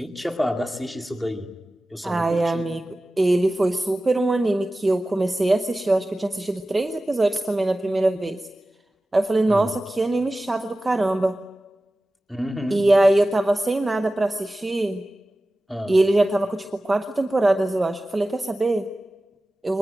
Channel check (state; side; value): normal; both; correlation 0.96